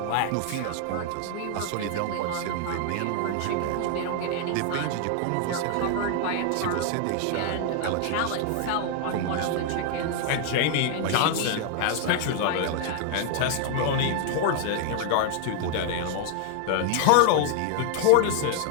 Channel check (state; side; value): different; both; correlation 0.00